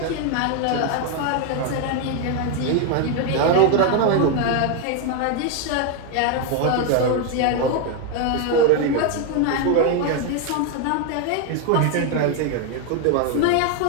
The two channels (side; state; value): both; different; correlation 0.01